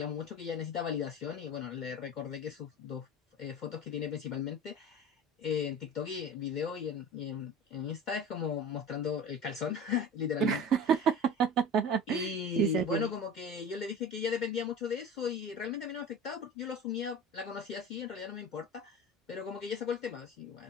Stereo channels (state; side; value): normal; both; correlation 0.35